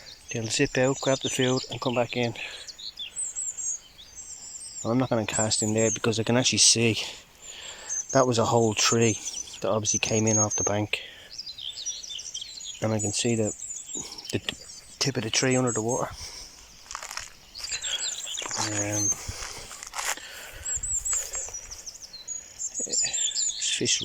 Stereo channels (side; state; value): both; identical; correlation 1.00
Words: they'll zip out, grab the food and come back in. I'm not going to cast in there because I can actually see that was a whole tree that obviously came in off the bank, and I can see the tip of the tree under the water. There's fish